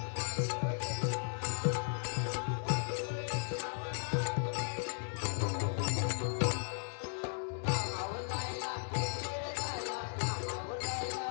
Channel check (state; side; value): silent; right; digital silence